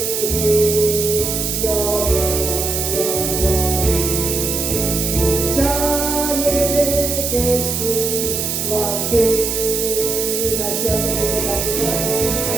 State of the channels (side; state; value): right; noise; hiss, 1 dB below the sound